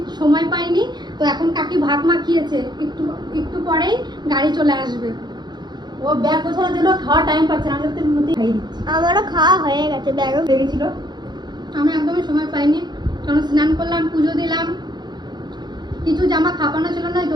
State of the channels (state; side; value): late; left; 0.21 ms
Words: সময় পাইনি, তো এখন কাকি ভাত মাখিয়েছে, একটু একটু পরেই গাড়ি চলে আসবে। ও ব্যাগ গোছানোর জন্য খাওয়ার টাইম পাচ্ছে না, আমি তো মধ্যে খাইয়ে দিচ্ছি। আমারও খাওয়া হয়ে গেছে, ব্যাগও হয়ে গেছিল। আমি একদমই সময় পাইনি, কারণ স্নান করলাম, পুজো দিলাম, কিছু জামা খাপানো ছিল না,